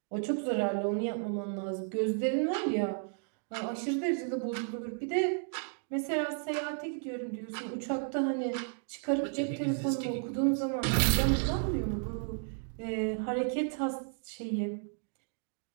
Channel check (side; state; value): left; silent; 56 dB below the other